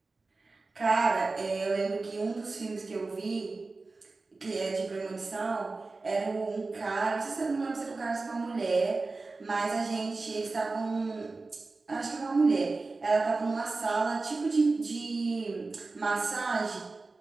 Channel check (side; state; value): left; quieter; 3.7 dB